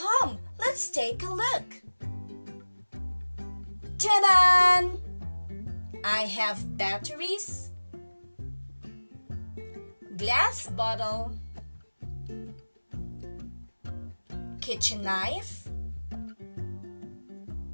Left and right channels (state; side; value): inverted; both; correlation -1.00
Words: let's take a look. Ta-da! I have batteries, glass bottle, kitchen knife,